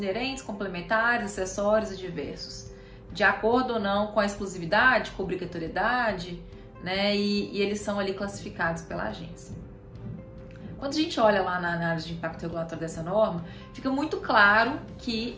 complementares, acessórios e diversos, de acordo ou não com a exclusividade, com a obrigatoriedade, né, e eles são ali classificados pela agência. Quando a gente olha lá na análise de impacto regulatório dessa norma, fica muito claro que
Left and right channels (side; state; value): both; identical; correlation 1.00